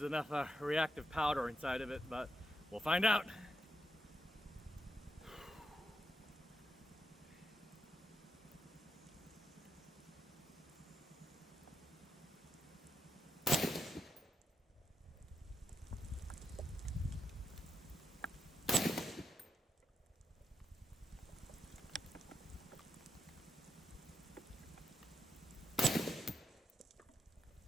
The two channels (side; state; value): both; normal; correlation 0.83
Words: enough reactive powder inside of it, but we'll find out.